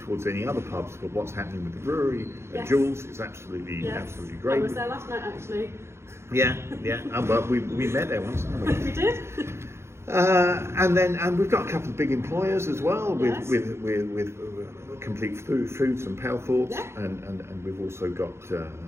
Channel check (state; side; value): late; left; 0.13 ms